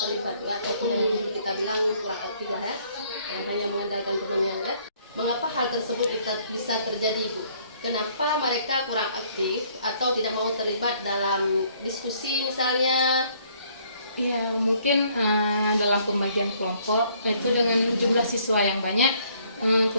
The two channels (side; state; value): both; inverted; correlation -0.63